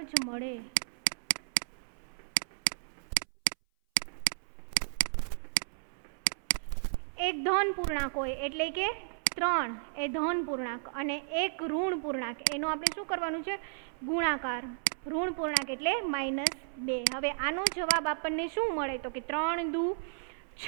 જ મળે. એક ધન પૂર્ણાંક હોય એટલે કે 3 એ ધન પૂર્ણાંક અને એક ઋણ પૂર્ણાંક એનો આપણે શું કરવાનું છે? ગુણાકાર. ઋણ પૂર્ણાંક એટલે -2. હવે આનો જવાબ આપણને શું મળે? તો કે 3 દુ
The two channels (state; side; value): silent; left; 56 dB below the other